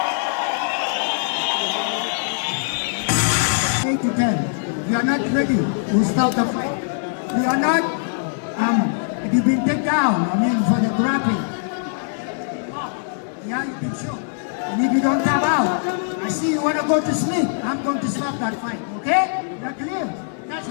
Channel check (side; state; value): right; silent; digital silence